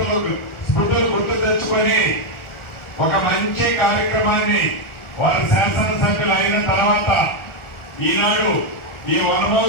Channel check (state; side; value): late; right; 1.4 ms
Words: స్మృతులు గుర్తు తెచ్చుకొని ఒక మంచి కార్యక్రమాన్ని వారి శాసనసభ్యులు అయిన తర్వాత ఈనాడు ఈ